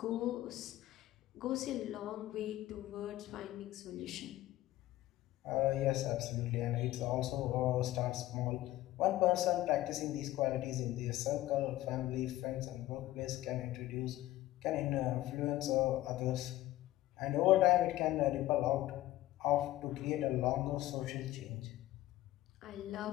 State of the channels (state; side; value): quieter; right; 15.6 dB